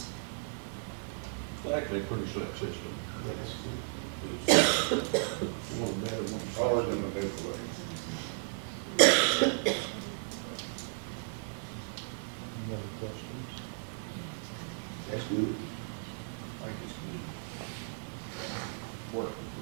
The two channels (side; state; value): left; silent; 55 dB below the other